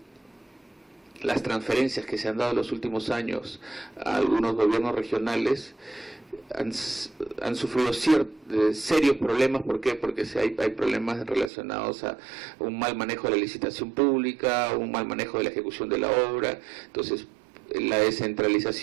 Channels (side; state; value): left; drops out; at 11.5 s